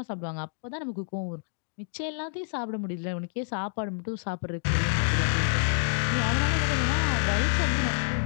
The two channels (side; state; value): right; silent; digital silence